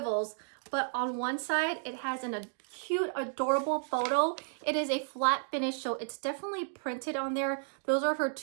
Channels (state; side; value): silent; left; digital silence